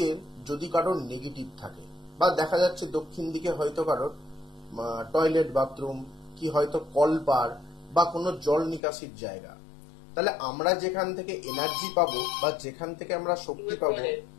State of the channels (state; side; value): drops out; right; at 8.8 s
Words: যদি কারোর নেগেটিভ থাকে বা দেখা যাচ্ছে দক্ষিণ দিকে হয়তো কারোর টয়লেট বাথরুম কি হয়তো কলপার বা কোনো জল নিকাশির জায়গা, তাহলে আমরা যেখান থেকে এনার্জি পাবো বা যেখান থেকে আমরা শক্তি পাবো,